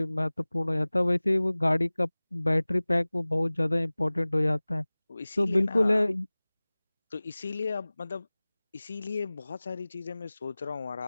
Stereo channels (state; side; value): inverted; both; correlation -0.99